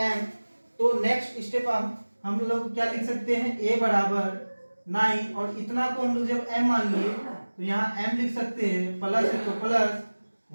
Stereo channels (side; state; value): both; inverted; correlation -1.00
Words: तो नेक्स्ट स्टेप हम लोग क्या लिख सकते हैं a बराबर 9, और इतना को हम लोग जब m मान लिए तो यहाँ m लिख सकते हैं, प्लस है तो प्लस,